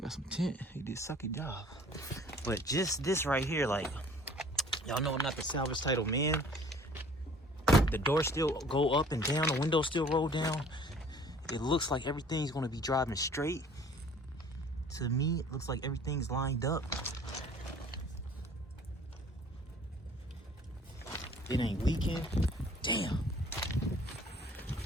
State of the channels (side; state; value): both; normal; correlation 0.51